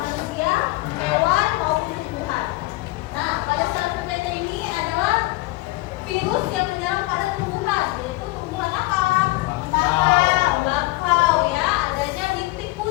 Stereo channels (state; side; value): quieter; right; 20.5 dB